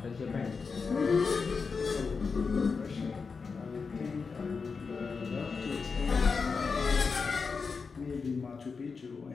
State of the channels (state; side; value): quieter; right; 5.0 dB